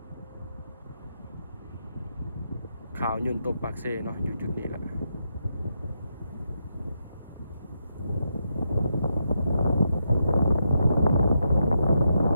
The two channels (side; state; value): both; inverted; correlation -0.83